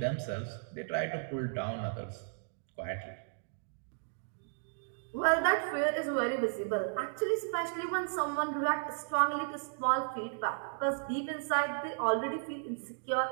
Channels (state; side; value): silent; left; digital silence